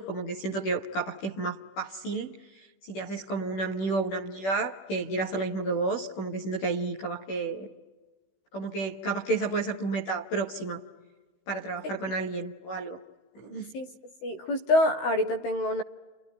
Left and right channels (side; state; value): right; late; 16 ms